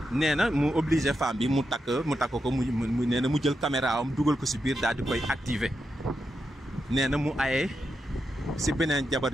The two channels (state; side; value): normal; both; correlation 0.86